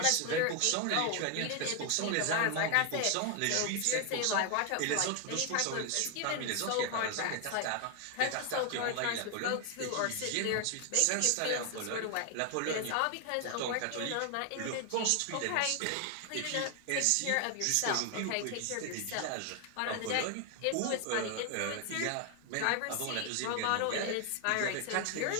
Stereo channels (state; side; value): different; both; correlation 0.01